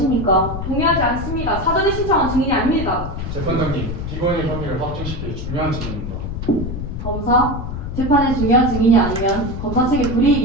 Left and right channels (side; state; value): left; noise; rumble, 6 dB below the sound